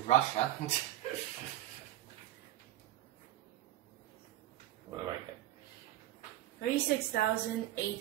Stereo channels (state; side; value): quieter; left; 14.2 dB